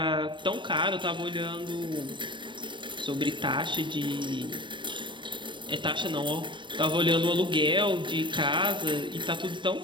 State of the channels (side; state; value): left; late; 0.23 ms